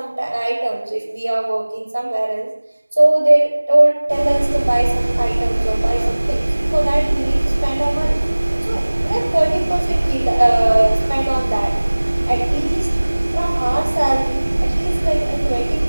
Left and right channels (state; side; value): inverted; both; correlation -1.00